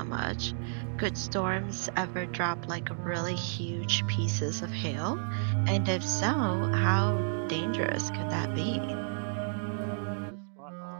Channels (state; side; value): silent; left; digital silence